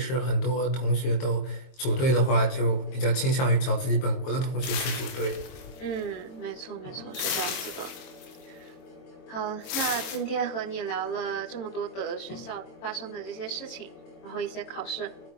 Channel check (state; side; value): late; right; 22 ms